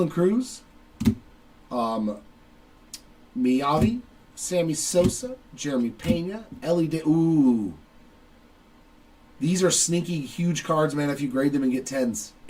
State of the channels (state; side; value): identical; both; correlation 1.00